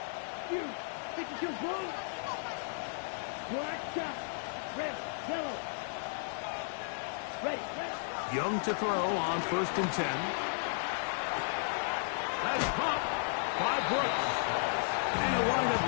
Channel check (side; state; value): right; silent; digital silence